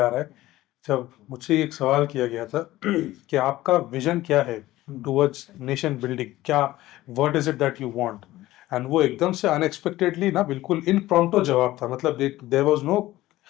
आ रहा है, जब मुझसे एक सवाल किया गया था कि आपका विजन क्या है टुवर्ड्स नेशन बिल्डिंग, क्या what is it that you want, and वो एकदम से अनएक्सपेक्टेडली ना बिल्कुल इम्प्रॉम्प्टू जवाब था। मतलब there was no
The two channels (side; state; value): right; quieter; 16.4 dB